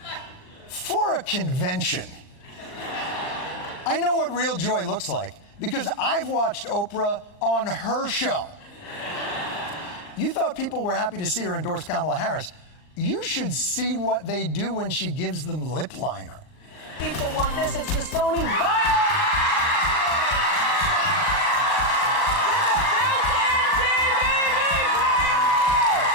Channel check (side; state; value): right; late; 38 ms